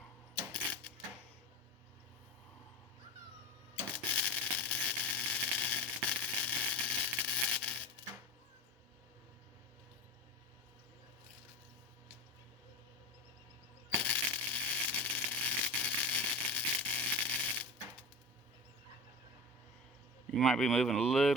You might be moving a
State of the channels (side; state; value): both; normal; correlation 0.28